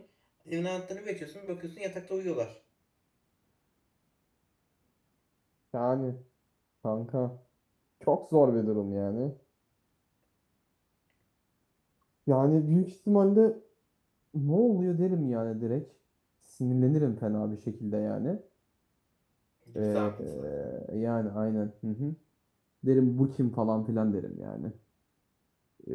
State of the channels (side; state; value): both; identical; correlation 1.00